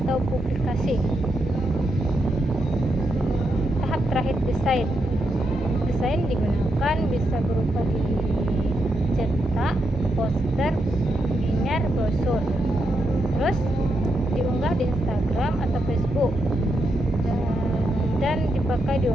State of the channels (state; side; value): normal; both; correlation 0.83